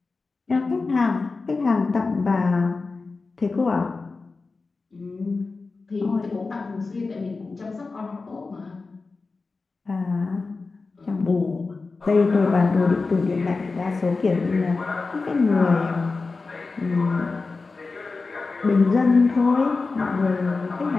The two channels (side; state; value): right; quieter; 4.0 dB